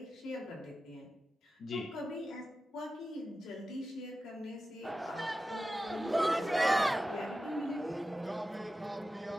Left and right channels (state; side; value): normal; both; correlation 0.93